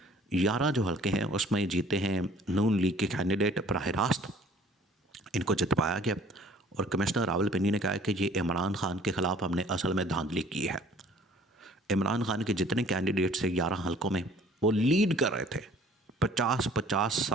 11 जो हलके हैं उसमें जीते हैं नून लीग के कैंडिडेट बराह रास्त, इनको जितवाया गया। और कमिश्नर रावलपिंडी ने कहा है कि ये इमरान खान के ख़िलाफ़ हमने असल में धांधली की है। इमरान खान के जितने कैंडिडेट से 11 हलकों में वो लीड कर रहे थे 50-50,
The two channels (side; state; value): both; normal; correlation 0.54